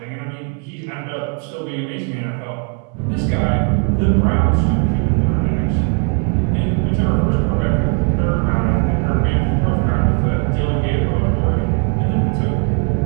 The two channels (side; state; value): left; quieter; 33.6 dB